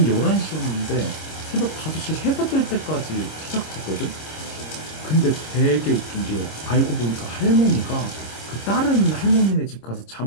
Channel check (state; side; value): late; right; 26 ms